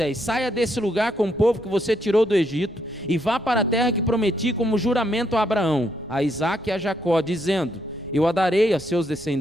saia desse lugar com o povo que você tirou do Egito, e vá para a terra que prometi como juramento a Abraão, a Isaque e a Jacó, dizendo: eu a darei a seus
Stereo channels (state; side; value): noise; right; rumble, 23 dB below the sound